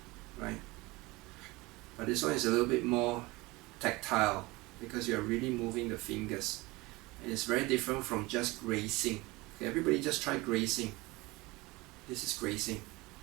right? But this one is a little bit more tactile because you're really moving the fingers, and it's very different from just grazing. Okay, everybody just try grazing. This is grazing.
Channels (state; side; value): quieter; left; 22.5 dB